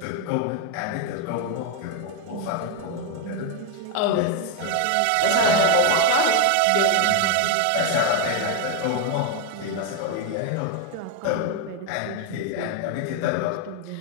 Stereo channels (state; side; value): different; both; correlation 0.01